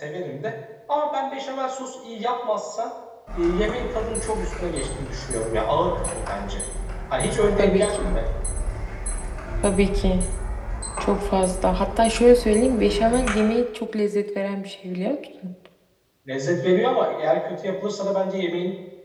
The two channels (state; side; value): identical; both; correlation 1.00